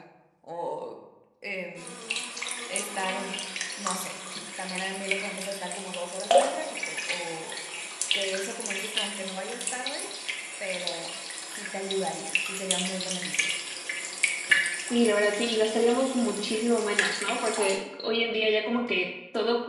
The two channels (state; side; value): identical; both; correlation 1.00